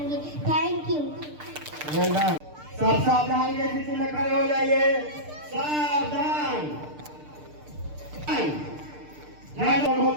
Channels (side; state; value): left; late; 6.7 ms